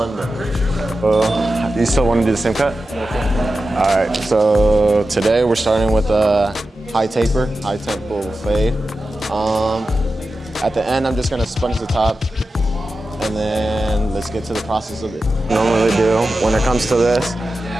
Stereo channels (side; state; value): both; normal; correlation 0.92